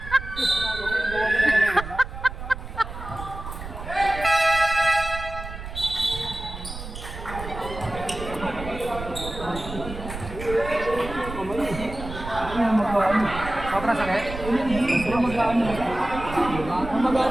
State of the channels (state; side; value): noise; right; rumble, 10 dB below the sound